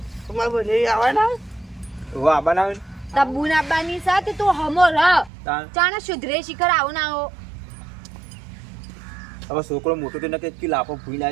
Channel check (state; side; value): drops out; left; at 5.3 s